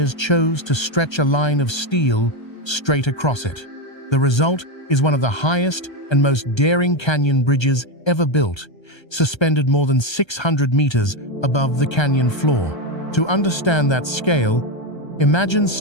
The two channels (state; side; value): late; right; 1.3 ms